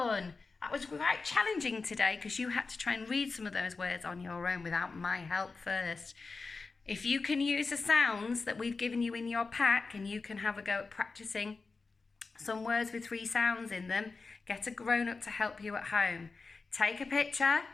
That was quite challenging today because you had to try and read some of those words on your own without my help first. If you can use the sounds that we've given you in your pack and you can have a go at practicing some words with 3 sounds in them, get a grown-up to help you at home. Take a picture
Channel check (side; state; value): right; quieter; 4.2 dB